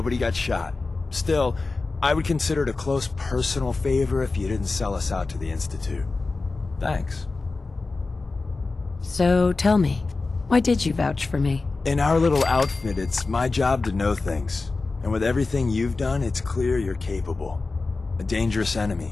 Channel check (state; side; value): quieter; right; 3.7 dB